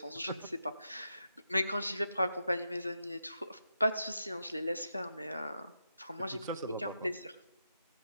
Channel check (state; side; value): inverted; both; correlation -0.85